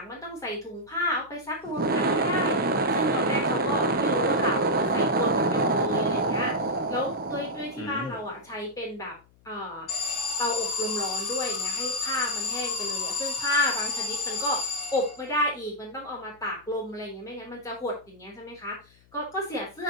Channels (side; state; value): left; noise; hum, 30 dB below the sound